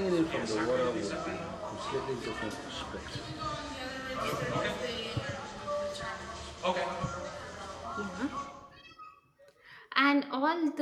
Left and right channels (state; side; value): identical; both; correlation 1.00